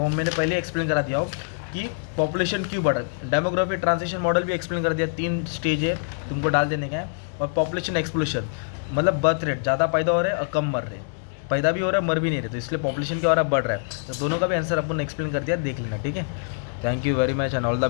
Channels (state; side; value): silent; right; digital silence